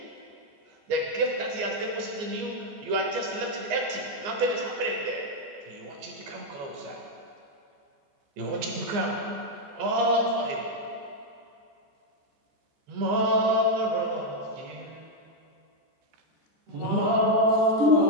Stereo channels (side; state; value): left; late; 14 ms